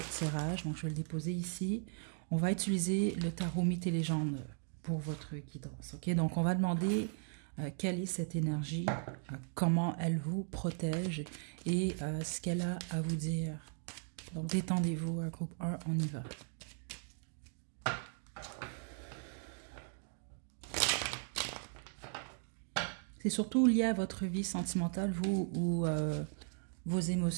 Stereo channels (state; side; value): silent; left; 53 dB below the other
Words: tirage, donc je vais le déposer ici. On va utiliser le tarot mythes et légendes pour votre guidance. Ok, donc on va demander quelle est cette énergie, comment elle vous protège et ce qu'elle a à vous dire. Donc détendez-vous, groupe 1, on y va. C'est surtout lié à votre vie sentimentale, vous, ou vos